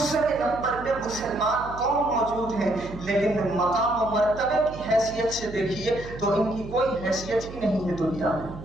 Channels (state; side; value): noise; right; hum, 13 dB below the sound